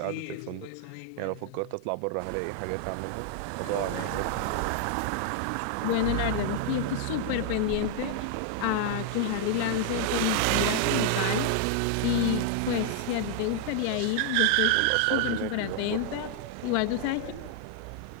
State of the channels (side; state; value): both; different; correlation 0.00